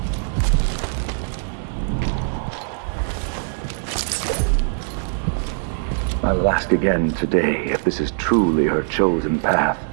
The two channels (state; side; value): silent; left; digital silence